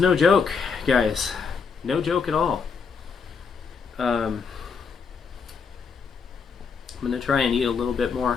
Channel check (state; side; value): quieter; right; 5.6 dB